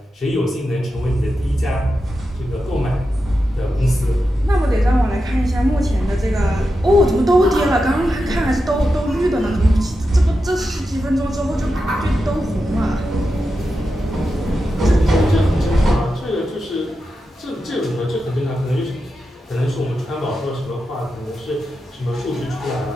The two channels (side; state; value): both; normal; correlation 0.89